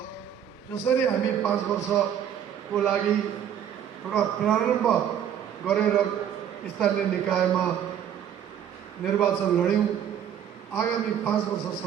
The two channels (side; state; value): left; quieter; 9.3 dB